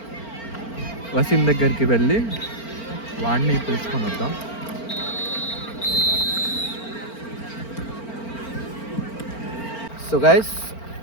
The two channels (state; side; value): late; right; 4.4 ms